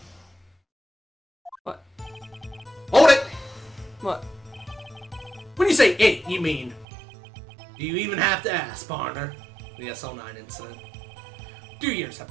What? Hold it! What? When you say it, you mean... Do you even have to ask, partner? The SL9 incident. 2 years have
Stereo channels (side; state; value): left; drops out; at 6.9 s